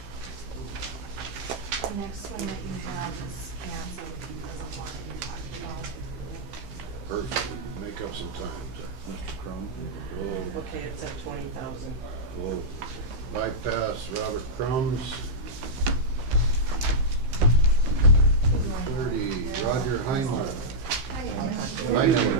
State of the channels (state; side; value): late; left; 15 ms